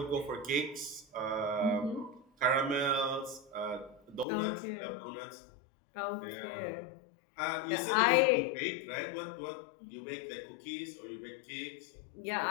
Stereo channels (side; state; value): right; drops out; at 4.2 s